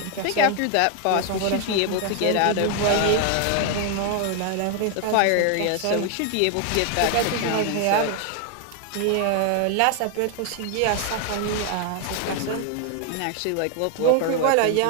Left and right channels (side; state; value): both; different; correlation 0.00